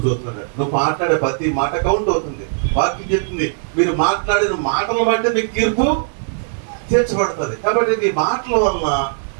చూస్తున్నాడు. నువ్వు మాట్లాడే ప్రతి మాట కౌంట్ అవుతుంది. వాక్యం చెప్తుంది, మీరు మాట్లాడిన మాటలను బట్టి మీకు తీర్పు తీర్చబడుతుంది. కాబట్టి నీ మాటల వలన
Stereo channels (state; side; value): silent; left; digital silence